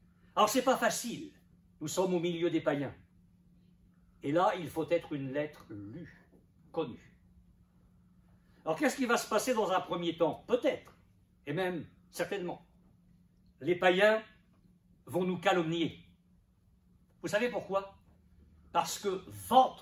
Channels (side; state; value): both; identical; correlation 1.00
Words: Alors, ce n'est pas facile. Nous sommes au milieu des païens. Et là, il faut être une lettre lue, connue. Alors, qu'est-ce qui va se passer dans un premier temps? Peut-être, et même certainement. Les païens vont nous calomnier. Vous savez pourquoi? Parce que